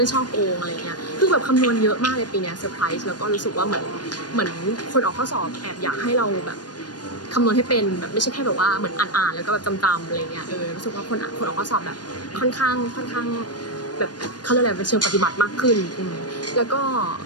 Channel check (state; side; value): late; right; 0.69 ms